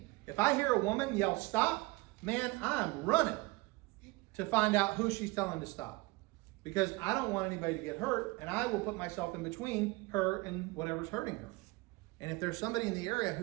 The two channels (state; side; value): quieter; left; 23.3 dB